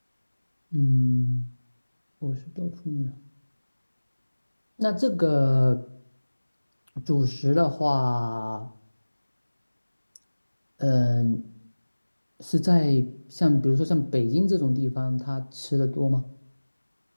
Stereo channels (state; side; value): inverted; both; correlation -1.00